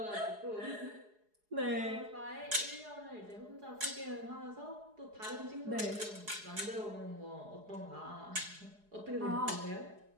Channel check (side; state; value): left; late; 4.8 ms